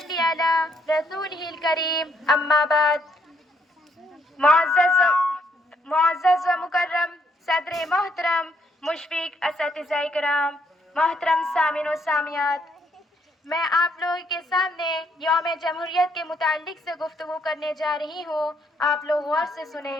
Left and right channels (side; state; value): both; normal; correlation 0.71